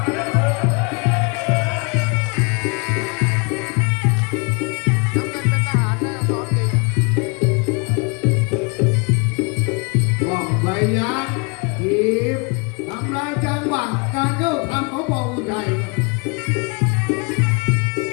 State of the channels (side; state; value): right; quieter; 32.3 dB